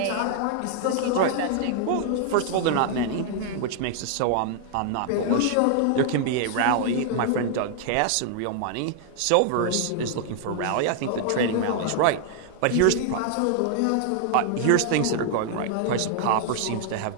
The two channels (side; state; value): both; different; correlation 0.00